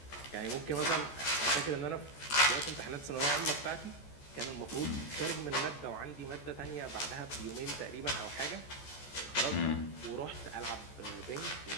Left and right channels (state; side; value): late; right; 14 ms